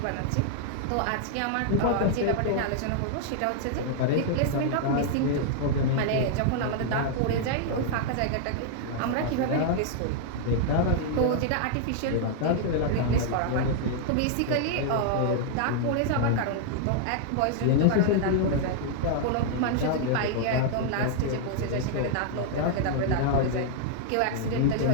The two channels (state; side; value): different; both; correlation -0.01